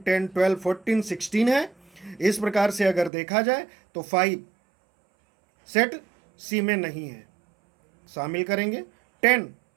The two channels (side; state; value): left; drops out; at 3.1 s